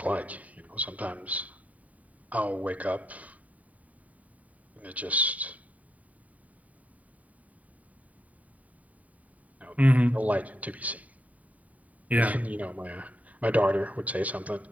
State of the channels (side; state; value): left; late; 0.070 ms